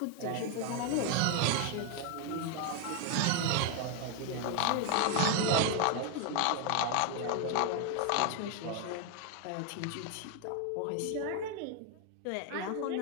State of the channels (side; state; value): both; different; correlation 0.01